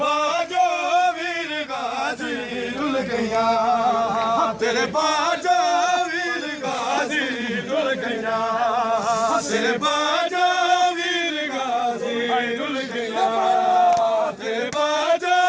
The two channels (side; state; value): both; identical; correlation 1.00